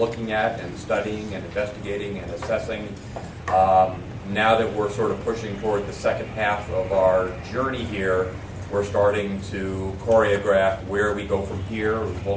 at and studying and investigating and assessing. Now that we're sort of pushing toward the second half of our journey here, we're starting to choreograph where we go from here. We'll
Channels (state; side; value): identical; both; correlation 1.00